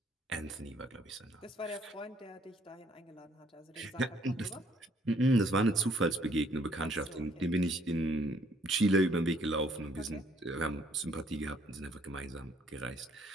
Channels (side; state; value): both; normal; correlation 0.64